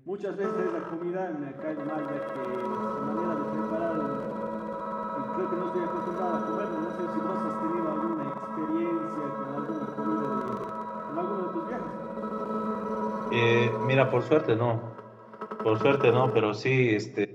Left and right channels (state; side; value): identical; both; correlation 1.00